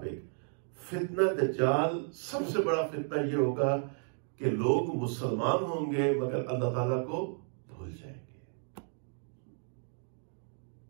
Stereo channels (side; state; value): left; silent; 56 dB below the other